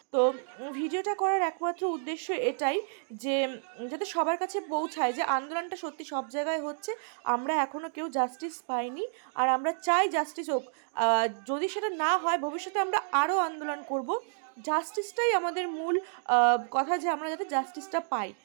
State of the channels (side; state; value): left; silent; digital silence